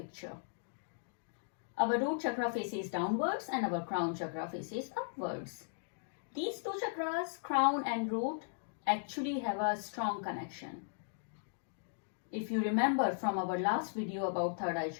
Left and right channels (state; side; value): silent; right; digital silence